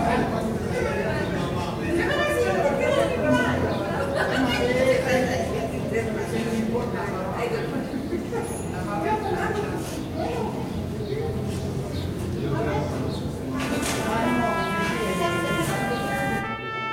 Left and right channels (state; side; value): identical; both; correlation 1.00